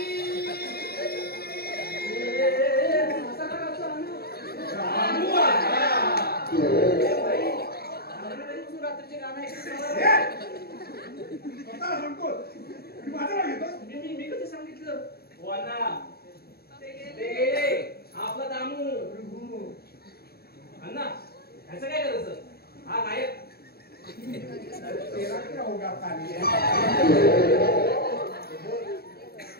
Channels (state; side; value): late; right; 0.46 ms